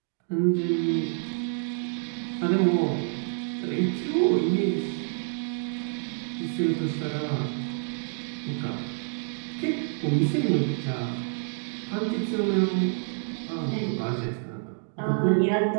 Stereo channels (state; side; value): silent; left; 60 dB below the other